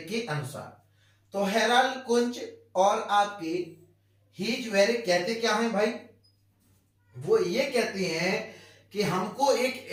के अनुसार। तो हेराल्ड कुंच और आपके हीजवेरिक कहते क्या है भाई, वो ये कहते हैं कि हमको एक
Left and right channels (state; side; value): identical; both; correlation 1.00